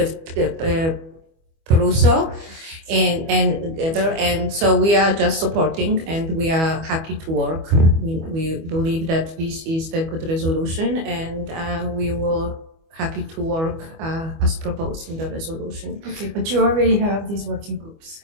Peruso. And so we are just supporting, and we are happy to work. We believe that this is the good resolution, and we will happy to work as proposed in the resolution. Okay, but you already have these working groups.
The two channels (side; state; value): left; late; 25 ms